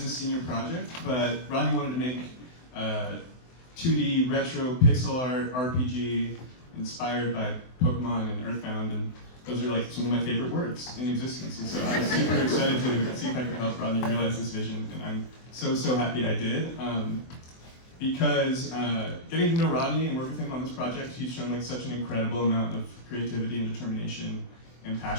the senior project, but Rodney wanted to make 2D retro pixel art RPG inspired by Pokemon and Earthbound, and those are like some of my favorite words in existence. And so I was super excited to see if I could help Rodney realize this vision, and I'm so happy I did. Because getting to know Rodney and work with him on this project, he's shown like such an incredible amount of creativity and determination and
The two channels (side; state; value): right; late; 24 ms